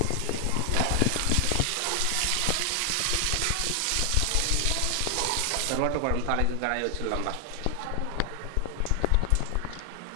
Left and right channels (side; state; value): both; different; correlation 0.00